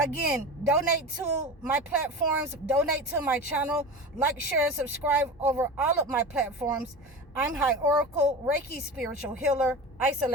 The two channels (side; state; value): both; normal; correlation 0.29